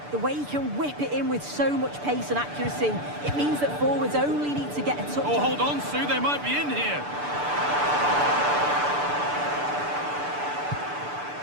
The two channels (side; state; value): left; late; 6.8 ms